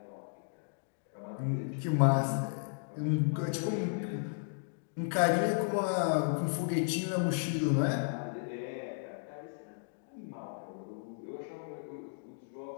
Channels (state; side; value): silent; right; digital silence